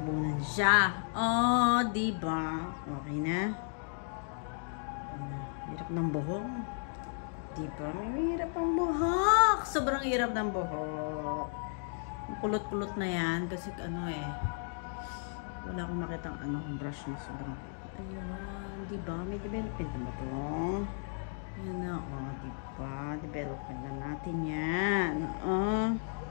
siya. Oh, diba? Okay na? Hirap ng buhok. Diba? May hirap ang buhok. Sobrang hirap ng buhok. Kulot-kulot na yan kasi wala akong makitang brush na sobrang ayun, diba? May development na ba ito? Ayan na, diba? Development na natin yan.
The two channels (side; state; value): right; silent; 55 dB below the other